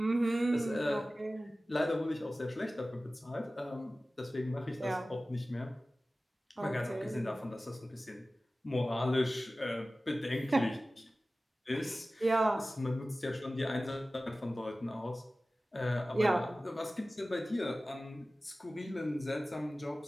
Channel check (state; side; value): normal; both; correlation 0.96